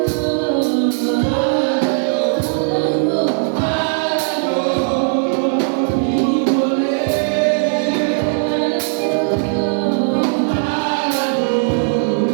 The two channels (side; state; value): left; silent; 55 dB below the other